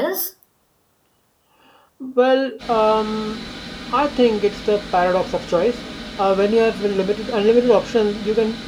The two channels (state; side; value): identical; both; correlation 1.00